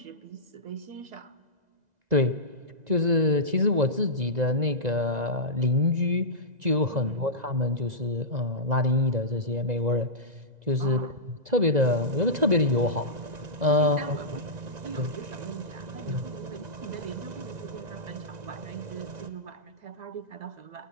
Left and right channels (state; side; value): late; left; 1.9 ms